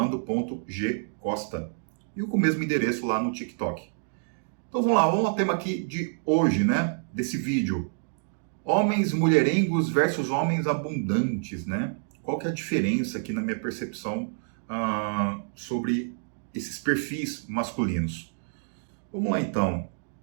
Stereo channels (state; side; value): silent; left; digital silence